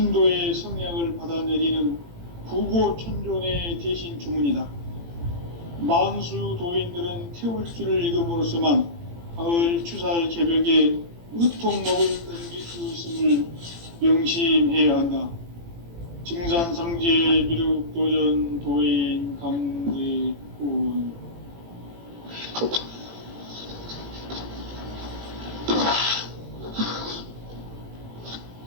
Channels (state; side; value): late; left; 18 ms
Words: 성량을 받아내리는 부고천존의 대신 주문이다. 만수 도인들은 태울주를 읽음으로써만 가을 추살 개벽에 의통목을 넘길 수 있음을 명심해야 한다. 증산상제 미륵도전 도인 강대군.